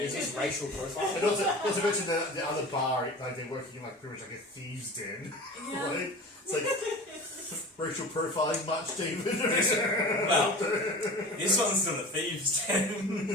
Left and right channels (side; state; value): both; normal; correlation 0.35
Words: Is this racial profile? And also mention the other bar, like they're working in like pretty much like a thieves' den. Yeah. Right? It's like racial profiling much, David. Well, this one's not a thieves'